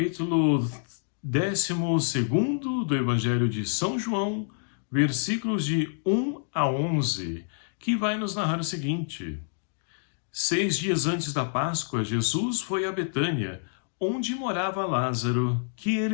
12º do Evangelho de São João, versículos de 1 a 11, que vai nos narrar o seguinte: 6 dias antes da Páscoa, Jesus foi a Betânia, onde morava Lázaro, que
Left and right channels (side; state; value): right; silent; digital silence